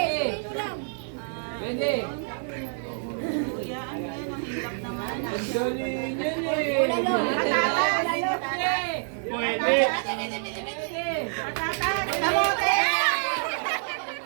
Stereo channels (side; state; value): left; silent; 60 dB below the other